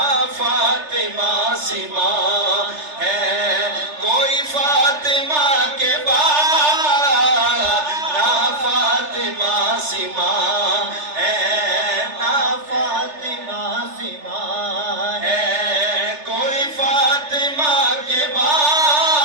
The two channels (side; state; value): left; late; 3.3 ms